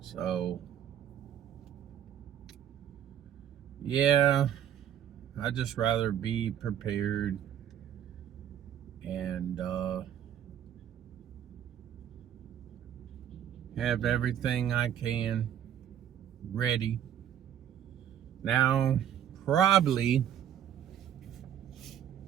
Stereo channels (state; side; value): quieter; left; 10.1 dB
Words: yeah, I'd just rather be prepared and have everything I can ready. Now, probably